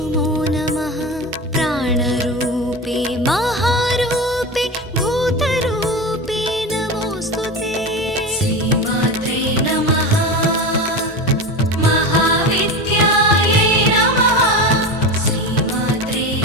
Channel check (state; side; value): normal; both; correlation 0.25